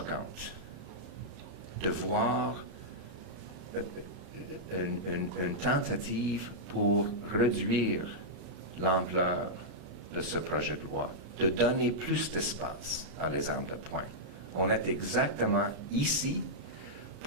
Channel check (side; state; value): left; late; 33 ms